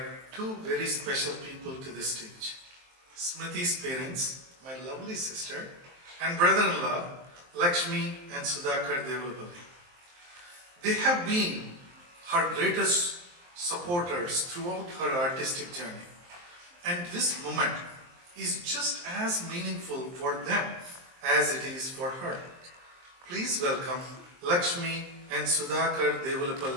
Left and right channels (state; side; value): late; left; 23 ms